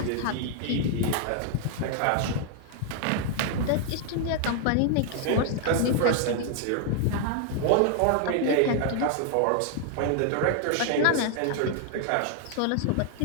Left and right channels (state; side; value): different; both; correlation 0.00